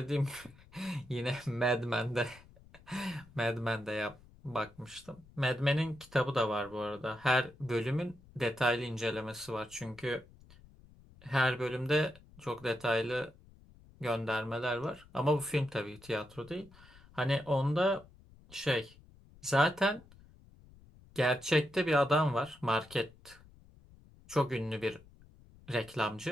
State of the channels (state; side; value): noise; left; rumble, 24 dB below the sound